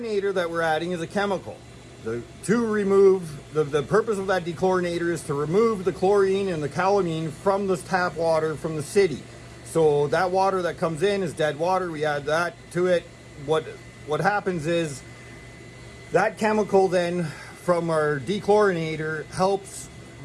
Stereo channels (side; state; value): both; identical; correlation 1.00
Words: that we're adding is a chemical. The purpose of that dechlorinator is to remove the chlorine and the calamine from the tap water from the city. So that water that comes in is dead water. We add that to it. What happens is that chemical then from our dechlorinator helps